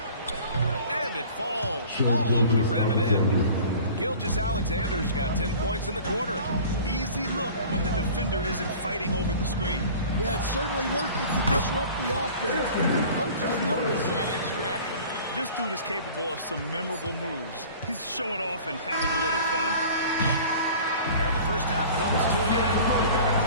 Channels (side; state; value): both; inverted; correlation -0.44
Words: And it falls all over the rim and in. Gilgeous-Alexander's got 10 points in the quarter. Easy look when the defender isn't fighting over the screen. Yeah, it's certainly worth it to disrupt the offense. Coaches notice that extra effort. This dude is capable of some memorable moves. He's showing off and having a little fun. And the first half comes to an end. We've got a